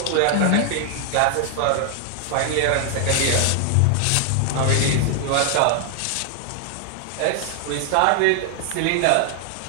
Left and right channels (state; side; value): different; both; correlation 0.00